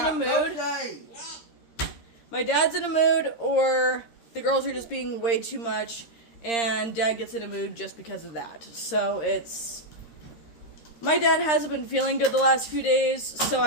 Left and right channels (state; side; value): late; right; 13 ms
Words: a mood. My dad's in a mood, or the girls are just being way too much, and Dad gets in a mood just because of that. So it's... My dad hasn't been feeling good the last few days, so